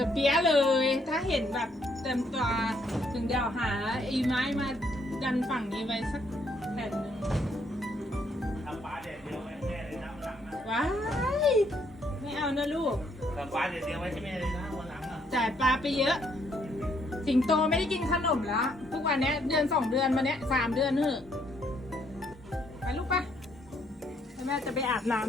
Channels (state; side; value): normal; both; correlation 0.70